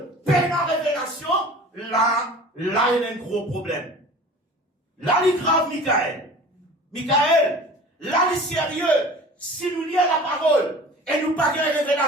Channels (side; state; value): both; normal; correlation 0.42